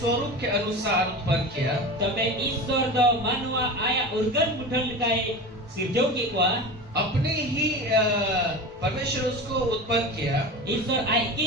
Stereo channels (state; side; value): normal; both; correlation 0.30